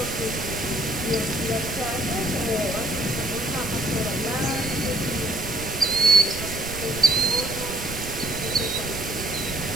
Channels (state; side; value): noise; right; rumble, 10 dB below the sound